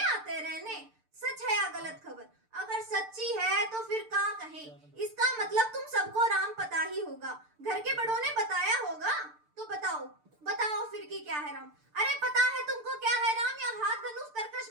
रहने। सच है या गलत खबर? अगर सच्ची है तो फिर क्या कहें, इसका मतलब तुम सबको राम पता ही होगा, घर के बड़ों ने बताया होगा। तो बताओ फिर की क्या है राम? अरे पता है तुमको क्या है राम? या हाथ धनुष तरकश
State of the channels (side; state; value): left; late; 6.7 ms